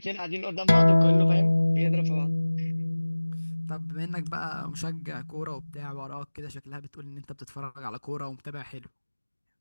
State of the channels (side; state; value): both; inverted; correlation -1.00